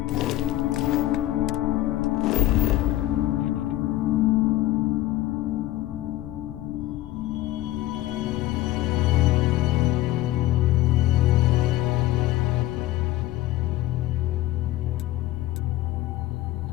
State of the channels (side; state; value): right; quieter; 15.8 dB